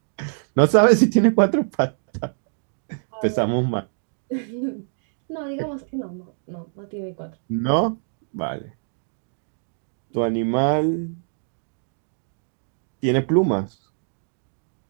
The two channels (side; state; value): left; silent; digital silence